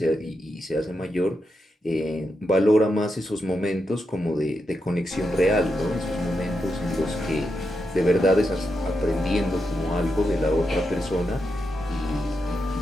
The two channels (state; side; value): normal; both; correlation 0.85